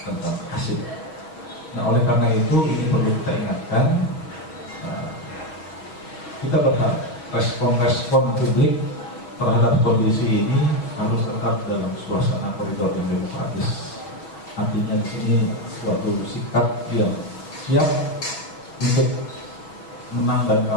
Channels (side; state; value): right; late; 6.3 ms